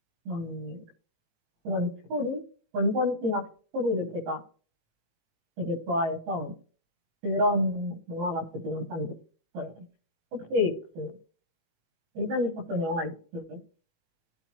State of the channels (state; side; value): late; left; 18 ms